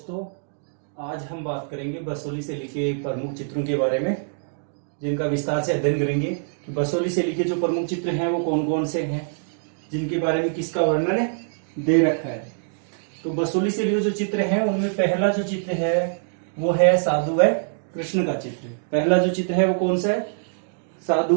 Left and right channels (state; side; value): silent; left; digital silence